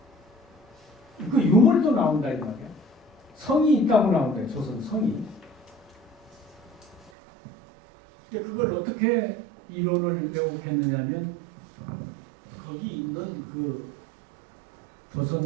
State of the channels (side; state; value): left; drops out; at 7.1 s